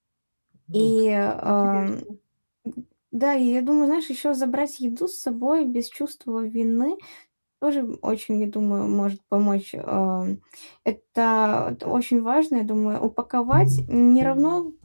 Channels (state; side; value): inverted; both; correlation -1.00